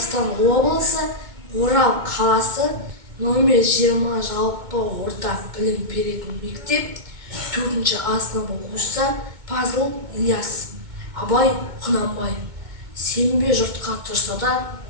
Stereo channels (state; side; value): late; left; 2.2 ms